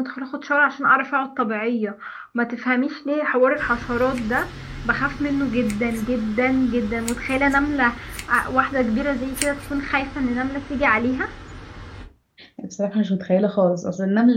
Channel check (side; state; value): both; identical; correlation 1.00